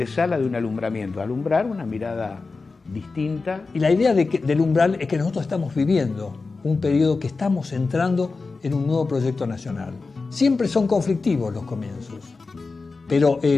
de un alumbramiento. Alumbrar una mirada distinta. Y la idea del umbral es que nosotros estamos viviendo un periodo que estamos entrando en un nuevo proyecto nacional. Siempre son conflictivos los comienzos, pero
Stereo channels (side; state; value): right; quieter; 4.1 dB